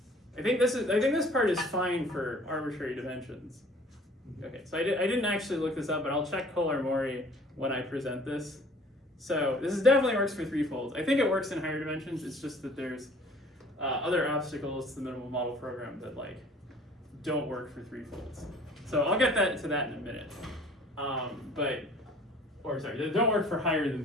think this part is fine for arbitrary dimensions. Okay, so I didn't actually look this up, but I'll check Kolar-Maury when I present this. So this definitely works for threefolds. I think it works in higher dimensions. It's just that there's other obstacles to the minimal model program that don't work for threefolds. So I'll get to that in a minute. They don't work for higher than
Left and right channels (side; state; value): both; normal; correlation 0.51